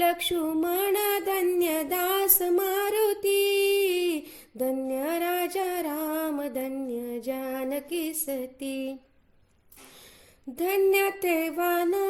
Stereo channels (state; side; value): identical; both; correlation 1.00